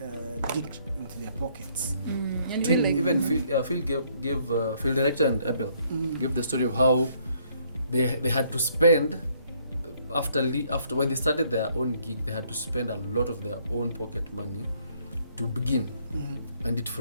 dig into their pockets. And Phil, like, even Phil gave Phil director and Abel gave the story of how they had to spend after when they started their own gig, they had to spend a lot of their own pocket money to begin, and it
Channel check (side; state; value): both; inverted; correlation -0.67